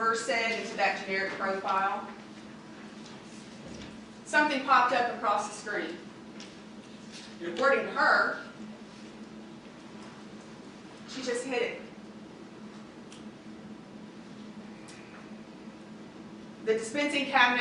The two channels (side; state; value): both; identical; correlation 1.00